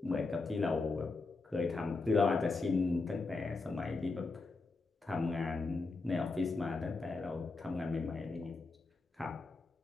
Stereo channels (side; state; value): right; quieter; 3.7 dB